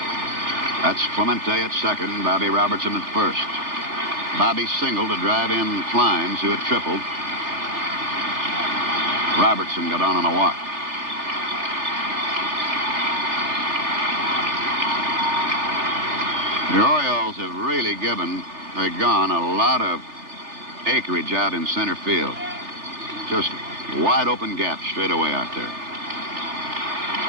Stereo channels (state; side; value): late; left; 3.4 ms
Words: That's Clemente at second, Bobby Robertson at first. Bobby singled to drive in Kleins, who had tripled. Robertson got on a walk. The Orioles have really given Pagan a lot of acreage out in center field. Just wide open gap straight away out there.